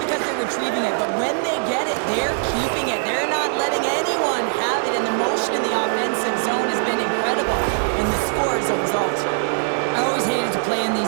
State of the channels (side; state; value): left; silent; digital silence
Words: because they're retrieving it. But when they get it, they're keeping it. They're not letting anyone have it, and the motion in the offensive zone has been incredible, and the score is a result. I always hated to play in